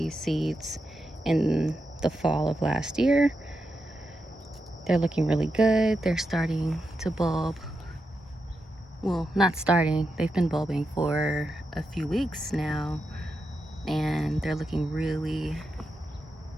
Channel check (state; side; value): normal; both; correlation 0.87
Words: seeds in the fall of last year. They're looking really good. They're starting to bulb. Well, not starting, they've been bulbing for a few weeks now, and they're looking really,